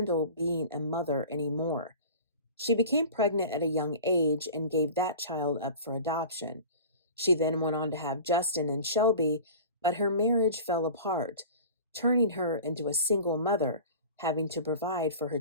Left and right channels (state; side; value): inverted; both; correlation -0.38